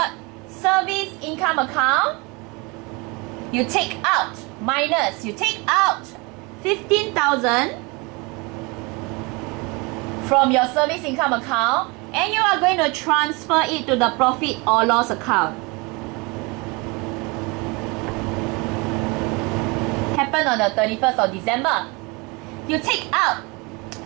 service income account. You take out, minus, you take out 15,000 from your service income account, and you are going to transfer it to the profit or loss account. Happened on the 31st of December. You take out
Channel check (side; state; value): left; quieter; 27.4 dB